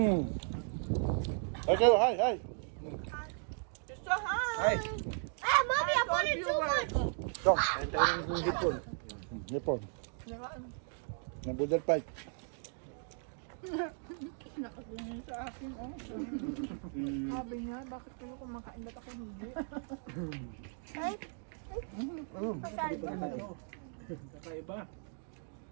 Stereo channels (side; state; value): left; silent; 53 dB below the other